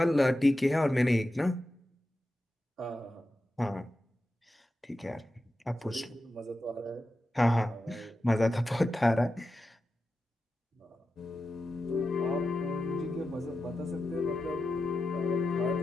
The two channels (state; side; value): normal; both; correlation 0.91